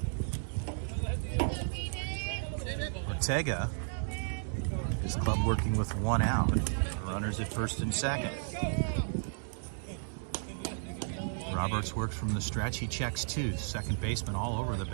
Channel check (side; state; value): left; silent; digital silence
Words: Ortega, his club working with 1 out. Runners at first and second. Roberts works from the stretch. He checks 2. Second baseman all over the